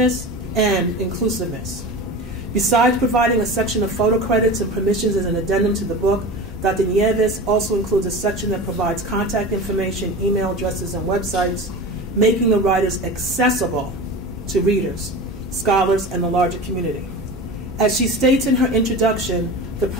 and inclusiveness. Besides providing a section of photo credits and permissions as an addendum to the book, Dr. Nieves also includes a section that provides contact information, email addresses, and websites, making the writers accessible to readers, scholars, and the larger community. As she states in her introduction, the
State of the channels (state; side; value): normal; both; correlation 0.31